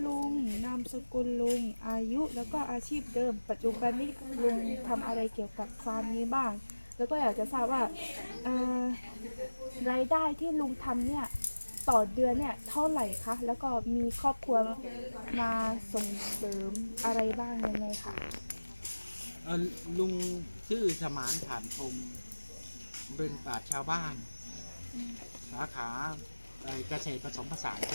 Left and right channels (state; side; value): inverted; both; correlation -1.00